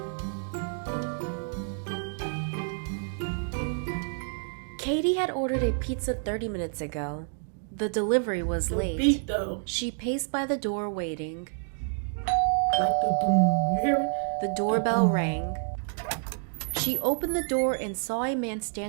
Katie had ordered a pizza 30 minutes ago. The delivery was late. Beat, though. She paced by the door waiting. Like the boom, you hear it? The doorbell rang. She opened the door and saw a man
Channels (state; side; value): silent; left; 59 dB below the other